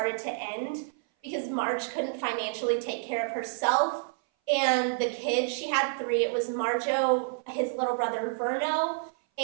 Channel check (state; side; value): silent; left; 57 dB below the other